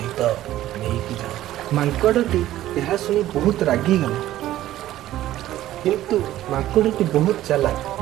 ନେଇକି ଯାଅ। ମାଙ୍କଡ଼ଟି ଏହା ଶୁଣି ବହୁତ ରାଗିଗଲା। କିନ୍ତୁ ମାଙ୍କଡ଼ଟି ବହୁତ ଚାଲାକ।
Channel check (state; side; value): quieter; left; 14.0 dB